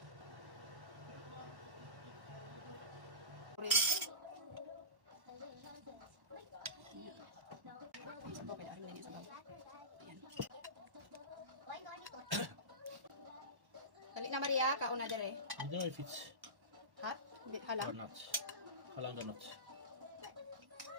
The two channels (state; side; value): late; left; 1.1 ms